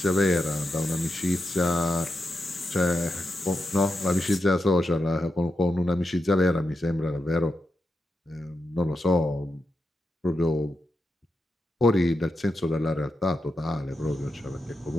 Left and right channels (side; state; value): both; normal; correlation 0.87